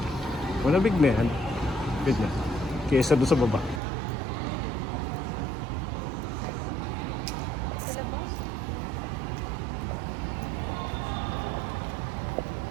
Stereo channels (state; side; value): drops out; left; at 3.8 s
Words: Malamig na yan. Ganyan. Kesa doon sa baba.